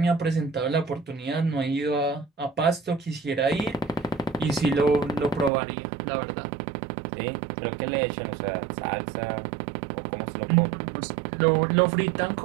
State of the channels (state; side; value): drops out; left; at 5.5 s